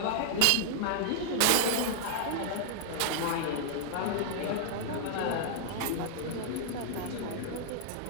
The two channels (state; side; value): different; both; correlation -0.01